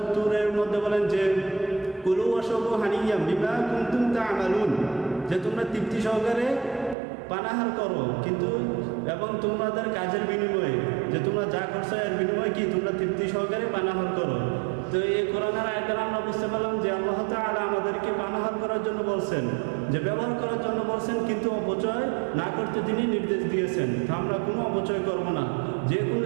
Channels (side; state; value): left; drops out; at 7.0 s